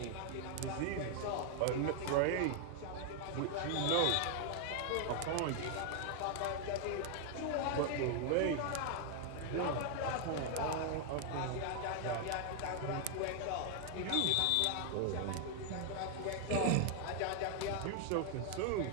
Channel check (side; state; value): both; different; correlation 0.00